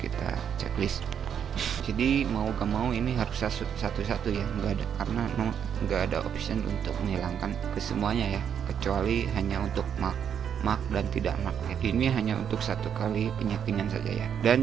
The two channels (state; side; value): quieter; left; 8.3 dB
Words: kita checklist. Jadi mau gak mau ini harus satu-satu ya, nggak ada, karena nggak ada option untuk menghilangkan kesemuanya ya, kecuali hanya untuk mark dan tidak mark ya. Ini hanya untuk 1 kali penyetingan saja ya.